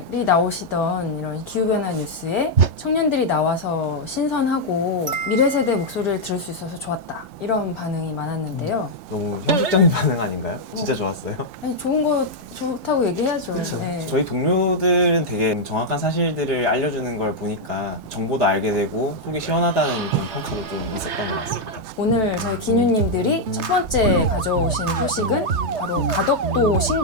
나오시던 이런 기후변화 뉴스에 청년들이 나와서 신선하고 미래 세대 목소리를 들을 수 있어서 좋았다. 이런 반응이 많았는데요. 너무 형식적인 반응 아닌가요? 진짜 좋았어요. 아니, 좋은 거 좋다고 얘기해야죠. 그쵸. 네. 저희 동료들은 되게 정확한 사실들을 알려주는 걸 보니까 정보도 알게 되고 속이 시원하다는 좀 평가도 좀 있었던 것 같습니다. 오늘 저희 기뉴님들이 첫 번째 가져오신 소식은 바로 가덕도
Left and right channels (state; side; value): late; left; 3.3 ms